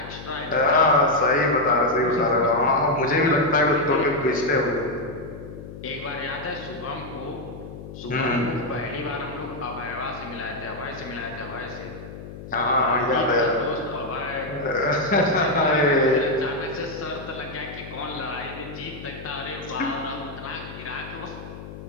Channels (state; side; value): noise; left; hum, 13 dB below the sound